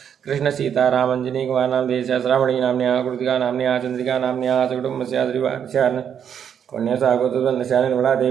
कृष्ण सीताराम अंजनी कुमार नामधेयस्या श्रावणी नाम्न्याः कृतिका नाम्न्याः चंद्रिका नाम्न्याः सकुटुम्बस्या श्रीवारस्या कन्यासा गोत्रवनस्या निर्मला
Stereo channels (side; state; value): left; quieter; 8.3 dB